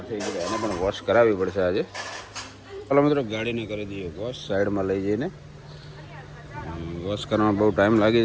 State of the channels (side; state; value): both; identical; correlation 1.00